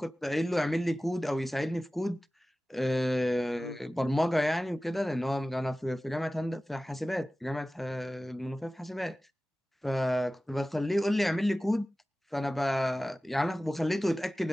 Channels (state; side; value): normal; both; correlation 0.97